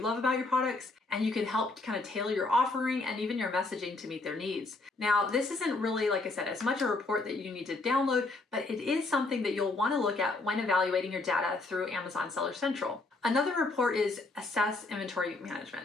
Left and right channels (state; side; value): quieter; right; 3.3 dB